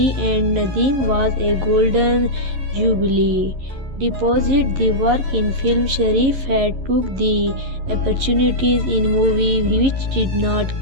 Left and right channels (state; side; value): late; left; 11 ms